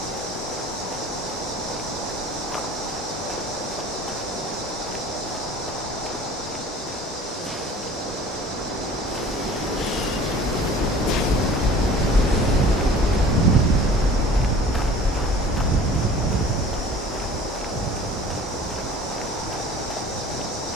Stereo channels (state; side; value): normal; both; correlation 0.46